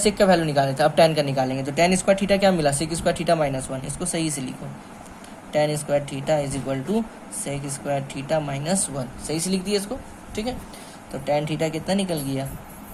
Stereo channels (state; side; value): identical; both; correlation 1.00